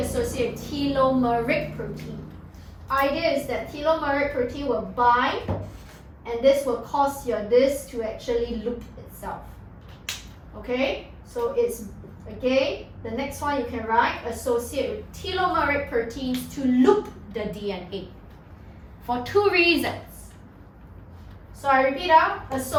telomeric protein. Idea is that telomeric protein will bind, and this will cause your disc to actually loop itself. Okay, so it's again the next one you can write, associate with telomeric proteins to loop the DNA for two reasons. So I repeat out,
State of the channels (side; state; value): both; identical; correlation 1.00